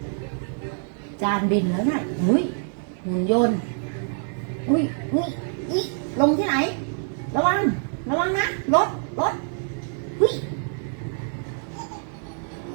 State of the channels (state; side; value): silent; left; 58 dB below the other